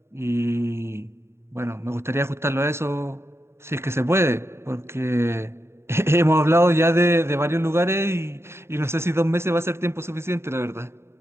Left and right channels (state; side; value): late; left; 0.12 ms